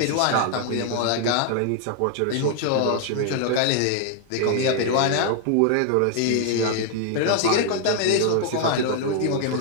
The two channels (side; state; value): both; different; correlation 0.00